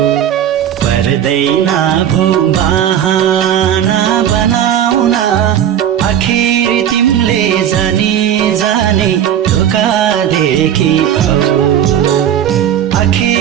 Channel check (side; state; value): left; quieter; 10.1 dB